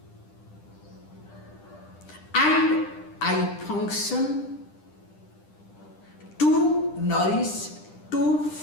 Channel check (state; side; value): late; right; 10 ms